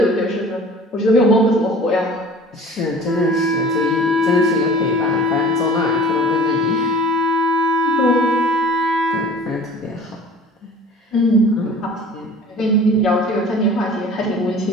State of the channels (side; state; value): both; normal; correlation 0.45